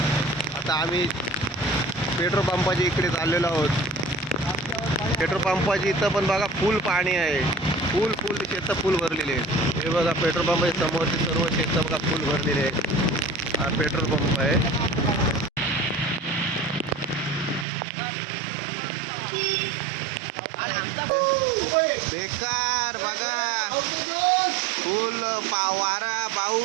आता आम्ही पेट्रोल पंपाच्या इकडे चाललेलो आहोत. पेट्रोल पंपाच्या इथं पण बघा फुल पाणी आहे. फुल फुल शेतं फुल भरलेले आहेत. हे बघा पेट्रोल पंपाच्या समोरचे सर्व शेतं बघा फुल भरलेले आहेत. हा पेट्रोल पंप आहे. बेकार बघा फुल वारा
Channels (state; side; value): drops out; left; at 17.7 s